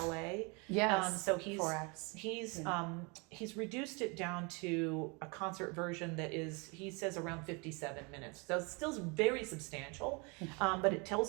Yes. So he's 4 acts. He's reduced it down to a concert version that is, he says, around 57 minutes. So it's still very substantial, but it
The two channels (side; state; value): left; quieter; 30.9 dB